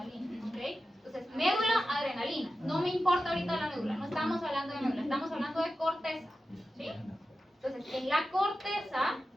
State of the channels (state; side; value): normal; both; correlation 0.93